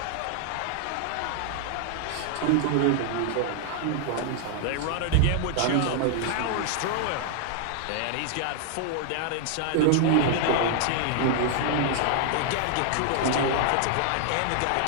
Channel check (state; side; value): different; both; correlation 0.00